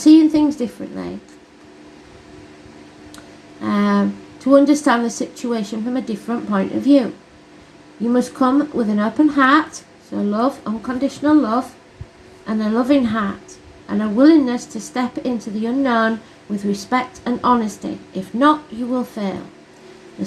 things differently. To understand the situation from a different point of view. You must come with an open heart, so love, unconditional love, and a loving heart, and a willingness to step into the unknown with respect and honesty. If not, you will fail. The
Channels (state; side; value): identical; both; correlation 1.00